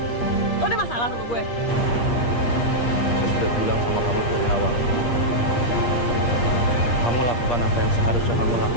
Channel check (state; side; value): late; right; 8.5 ms